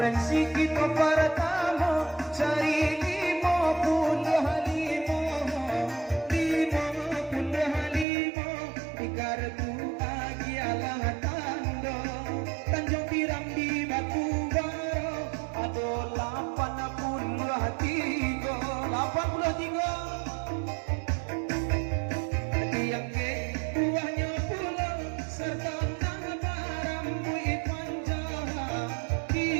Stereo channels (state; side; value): drops out; left; at 8.1 s